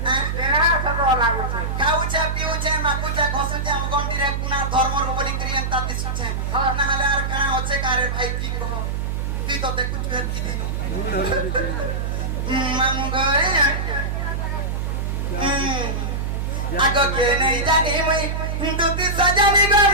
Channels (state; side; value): noise; right; hum, 1 dB below the sound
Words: नहीं तेरा सब लागू छे খাউছে পিউছে মাকুছে ঘসুছে আম গন্ডিরে কুনার ধর্মর উপরে ক্রিয়া তাতি সুছে না হলে আর কানা হচ্ছে কারে ভাই কি কহ তুই তো দেখু তুই কি দিন মামু গো আগো কে নেই জানি মুই দুতি সজানি গো